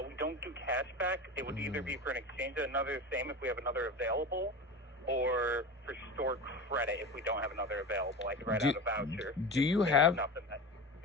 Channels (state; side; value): normal; both; correlation 0.28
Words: We don't do cash back. It would either be for an exchange of another same if we have another available, or for store credit if we don't have another available. I could write out a voucher. Do you have